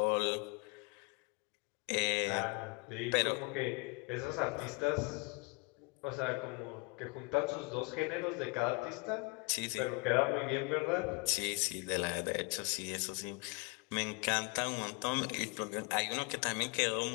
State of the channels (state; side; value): quieter; right; 29.7 dB